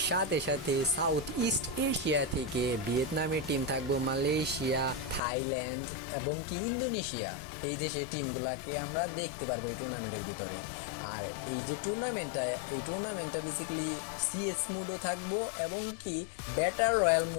সাথে সাথে সাউথ ইস্ট এশিয়া থেকে ভিয়েতনামের টিম থাকবো, মালয়েশিয়া, থাইল্যান্ড এবং কি ইন্দোনেশিয়া, এই দেশের টিমগুলোকে আমরা দেখতে পারবো এই টুর্নামেন্টের ভিতরে। আর এই যে টুর্নামেন্টটা বেসিক্যালি সিএস মোডও থাকবো এবং কি ব্যাটার রয়্যাল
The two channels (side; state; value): right; drops out; at 5.2 s